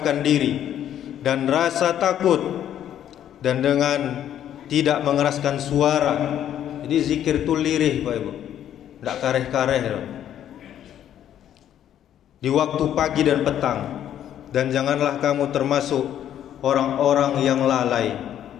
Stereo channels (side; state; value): right; quieter; 10.6 dB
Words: diri dan rasa takut, dan dengan tidak mengeraskan suara. Jadi zikir itu lirih, Pak Ibu, tidak kareh-kareh di waktu pagi dan petang. Dan janganlah kamu termasuk orang-orang yang lalai.